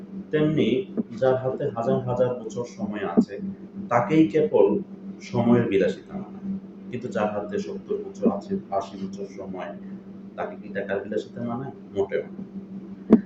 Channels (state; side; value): identical; both; correlation 1.00